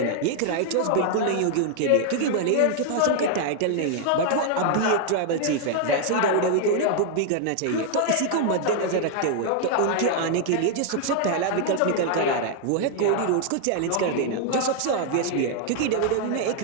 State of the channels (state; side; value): different; both; correlation 0.00